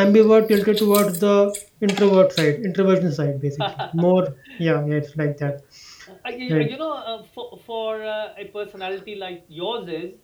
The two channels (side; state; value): both; identical; correlation 1.00